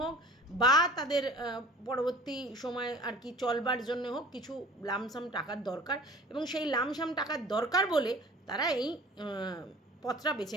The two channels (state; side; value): normal; both; correlation 0.44